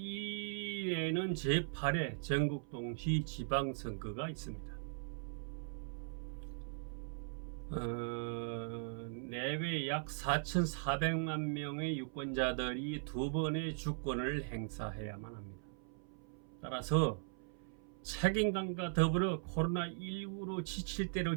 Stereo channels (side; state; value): left; silent; 51 dB below the other